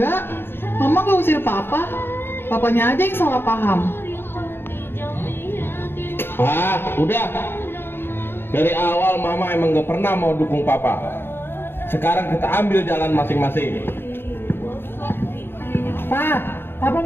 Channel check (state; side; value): late; right; 0.11 ms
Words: Mama nggak usir Papa. Papanya aja yang salah paham. Udah. Dari awal Mama emang gak pernah mau dukung Papa. Sekarang kita ambil jalan masing-masing. Pak, Papa